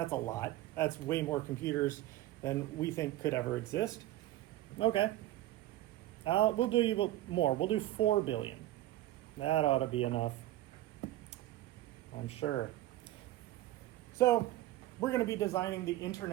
lot. That's way more computers than we think could ever exist. Okay. We'll do more. We'll do 4 billion. That ought to be enough, I'm sure. So we're going to be designing the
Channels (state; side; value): quieter; left; 15.2 dB